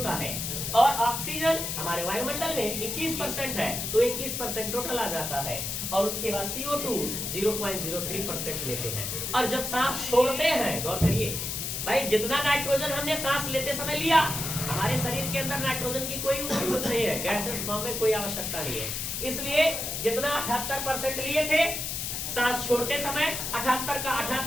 है, और ऑक्सीजन हमारे वायुमंडल में 21% है तो 21% टोटल आ जाता है, और उसके बाद CO2 0.03% लेते हैं। और जब सांस छोड़ते हैं, गौर करिए भाई, जितना नाइट्रोजन हमने सांस लेते समय लिया, हमारे शरीर के अंदर नाइट्रोजन की कोई जरूरत नहीं है, गैसेस फॉर्म में कोई आवश्यकता नहीं है। इसलिए जितना 78% लिए थे, सांस छोड़ते समय 78 का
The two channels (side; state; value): left; noise; hiss, 3 dB below the sound